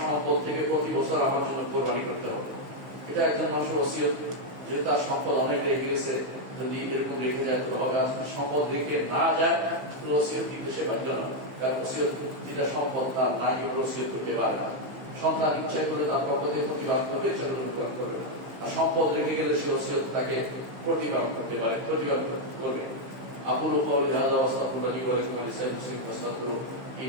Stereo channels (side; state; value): left; late; 15 ms